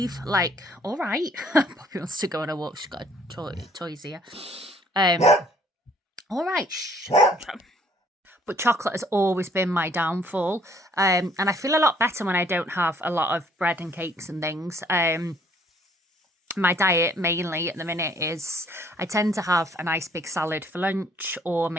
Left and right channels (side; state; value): both; normal; correlation 0.62